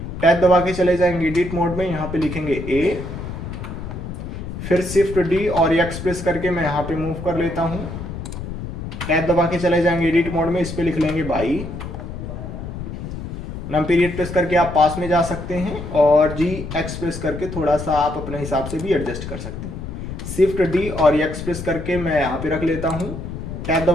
टैब दबा के चले जाएंगे एडिट मोड में, यहाँ पे लिखेंगे ए। फिर शिफ्ट डी और एक्स प्रेस करके मैं यहाँ पे मूव कर लेता हूँ। टैब दबा के चले जाएंगे एडिट मोड में, इस पे लिख लेंगे बाई। नम पीरियड प्रेस करके आप पास में जा सकते हैं और जी एक्स प्रेस करके थोड़ा सा आप अपने हिसाब से भी एडजस्ट कर सकते हैं। शिफ्ट डी और एक्स प्रेस करके मैं यहाँ पे रख लेता हूँ। टैब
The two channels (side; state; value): left; noise; rumble, 8 dB below the sound